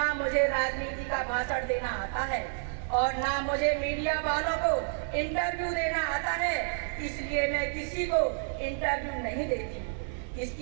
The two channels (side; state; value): left; silent; digital silence